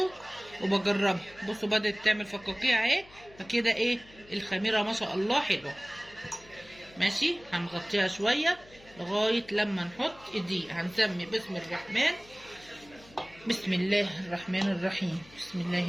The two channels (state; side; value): noise; left; hum, 23 dB below the sound